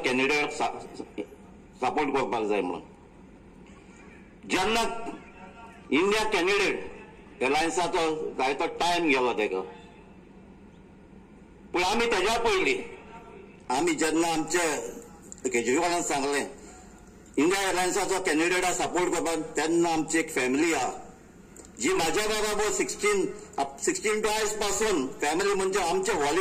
कॅन्डिडेट सपोर्ट करपाक जाय म्हणून. जेन्ना इंडिया कॅन्डिडेट एअरलायन्साचो जाय तो टायम गेलो तेका, पूण आमी तेज्या पयलीं आमी जेन्ना आमचे केजरीवालान सांगलें इंडिया एअरलायन्साचो कॅन्डिडेटा सपोर्ट करपाक, तेन्ना आमची एक फॅमिली आहा जी म्हाज्या बरोबर 16 टू आयज पासून फॅमिली म्हणजे आमचे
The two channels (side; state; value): both; identical; correlation 1.00